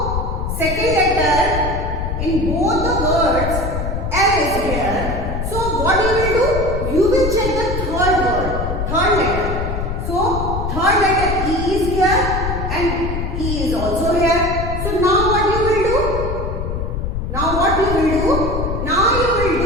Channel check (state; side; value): noise; left; rumble, 3 dB below the sound